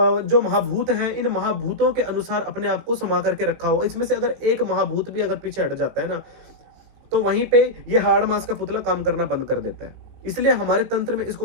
जो महाभूत हैं, इन महाभूतों के अनुसार अपने आप को समा करके रखा हुआ। इसमें से अगर एक महाभूत भी अगर पीछे हट जाता है ना, तो वहीं पे ये हार्ड मांस का पुतला काम करना बंद कर देता है। इसलिए हमारे तंत्र में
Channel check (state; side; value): late; left; 18 ms